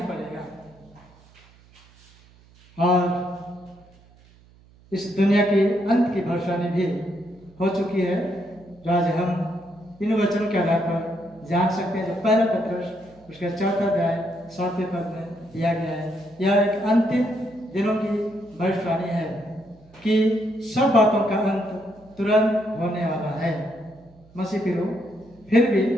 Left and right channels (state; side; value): noise; right; hum, 27 dB below the sound